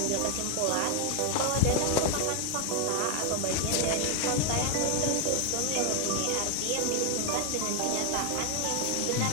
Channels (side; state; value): both; different; correlation 0.00